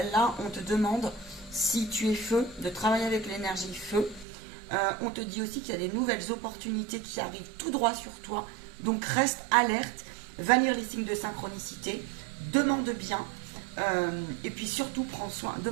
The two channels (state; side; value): drops out; left; at 4.2 s